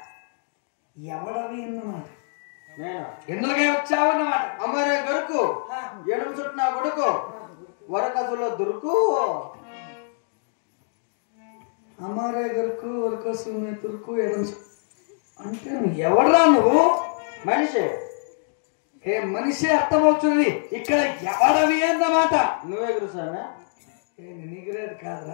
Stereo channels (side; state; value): right; silent; digital silence